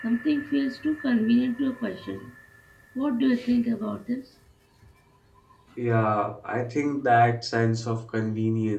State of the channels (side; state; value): both; identical; correlation 1.00